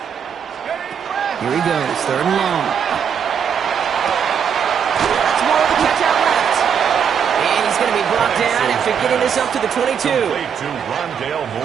Here he goes, third and long. That's more of a catch out left. And he's going to be brought down after getting this up to the 22. Complete to Rondale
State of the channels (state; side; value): quieter; left; 7.5 dB